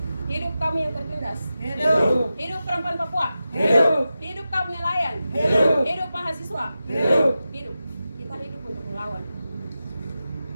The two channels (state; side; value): inverted; both; correlation -0.92